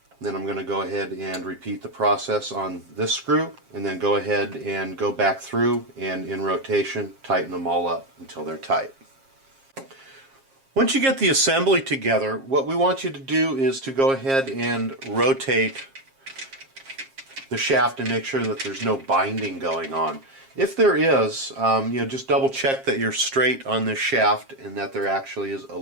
Then I'm going to go ahead and repeat the process on this screw, and then go ahead and go back through and in rotation tighten them all up until they're tight. Once you get the assembly together, what we want you to do is to go ahead and rotate the shaft and make sure that there's no binding going on. If there is, just double check that you're straight on this shaft and that there actually is a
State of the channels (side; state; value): left; late; 7.4 ms